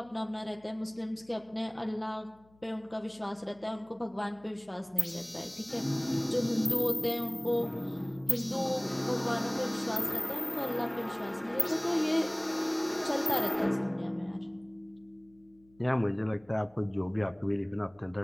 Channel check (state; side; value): noise; left; hum, 30 dB below the sound